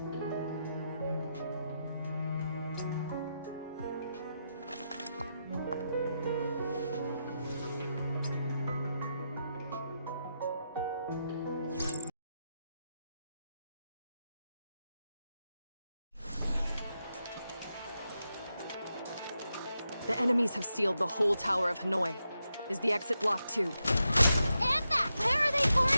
The enemies have sealed the whole Tower of Hanoi. Is the exit blocked too? Anna, where are they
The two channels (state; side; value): inverted; both; correlation -0.86